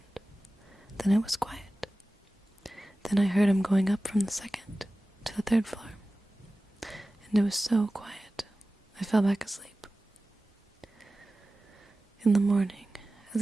Then it was quiet. Then I heard him going up from the 2nd to the 3rd floor. And it was so quiet, I fell back asleep. In the morning,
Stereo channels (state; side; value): normal; both; correlation 0.96